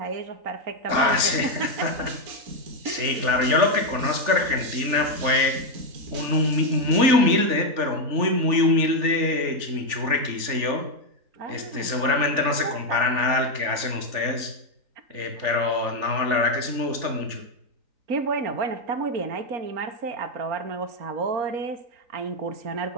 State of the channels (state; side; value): late; left; 3.4 ms